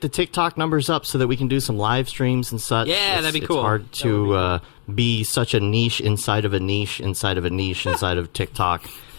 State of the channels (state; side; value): silent; right; digital silence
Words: the TikTok numbers up so that we can do some live streams and such. Yeah, that'd be cool. It's hard to be such a niche inside of a niche inside of a niche inside of TikTok.